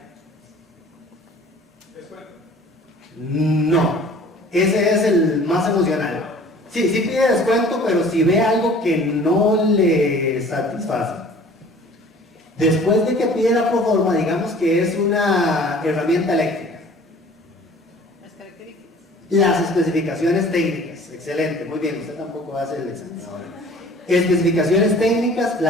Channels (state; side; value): normal; both; correlation 0.49